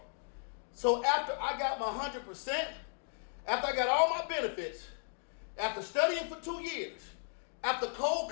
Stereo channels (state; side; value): silent; right; digital silence